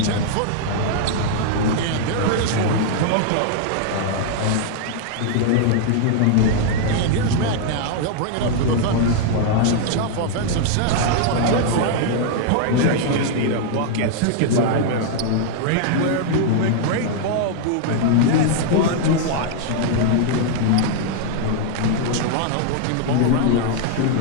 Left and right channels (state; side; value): different; both; correlation 0.00